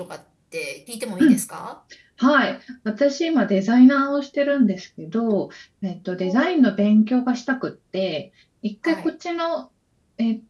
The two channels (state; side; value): identical; both; correlation 1.00